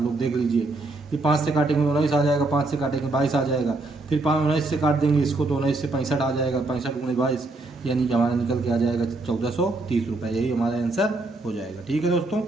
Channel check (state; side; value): quieter; left; 3.1 dB